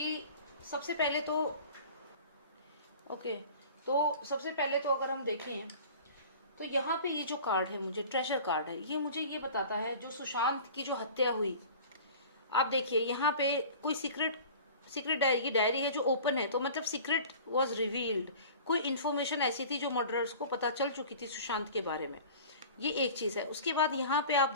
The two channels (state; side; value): inverted; both; correlation -0.41